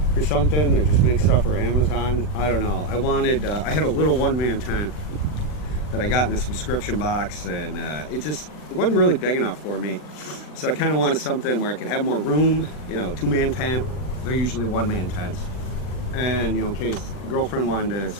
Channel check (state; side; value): late; right; 39 ms